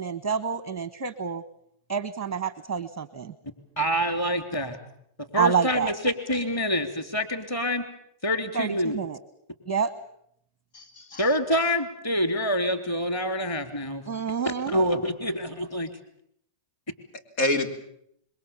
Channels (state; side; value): late; right; 1.6 ms